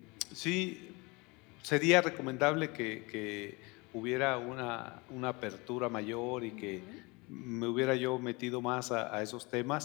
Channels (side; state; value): right; quieter; 26.6 dB